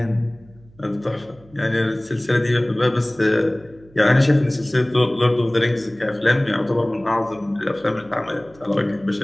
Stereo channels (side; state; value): right; noise; hum, 26 dB below the sound